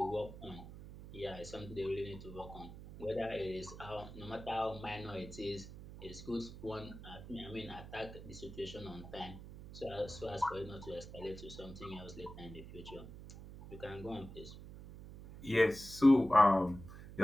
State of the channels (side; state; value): right; noise; hum, 13 dB below the sound